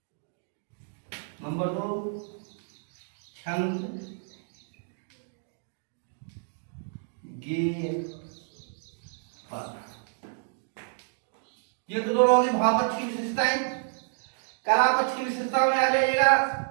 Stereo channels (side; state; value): left; silent; digital silence